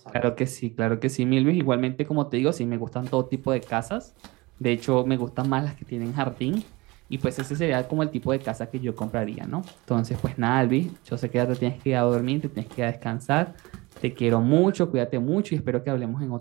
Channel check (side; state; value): left; quieter; 23.2 dB